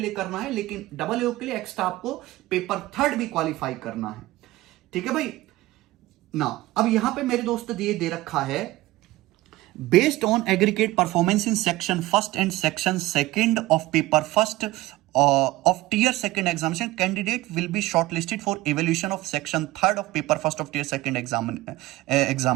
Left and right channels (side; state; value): left; quieter; 17.9 dB